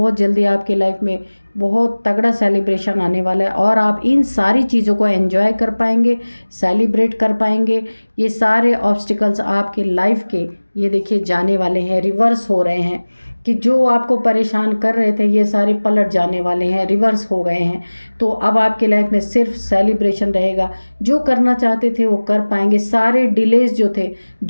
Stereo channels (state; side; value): inverted; both; correlation -1.00